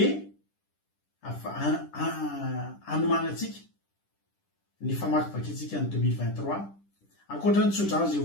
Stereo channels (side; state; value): right; late; 10 ms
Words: anomanantsika ny famakivakintsika ny 2023 ankoatra ny tsodrano zay